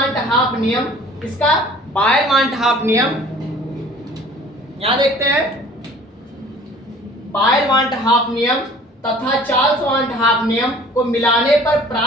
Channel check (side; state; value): both; normal; correlation 0.49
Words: नियम, इसका बायल-मार्ट-हाफ नियम यहां देखते हैं। बायल-मार्ट-हाफ नियम तथा चार्ल्स-मार्ट-हाफ नियम को मिलाने पर